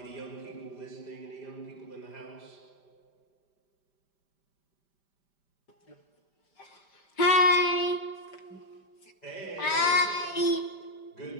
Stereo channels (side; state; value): right; late; 5.1 ms